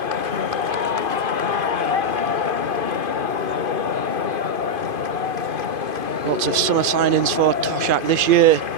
Lots of summer signings for Toshak this year.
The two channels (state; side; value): late; left; 2.5 ms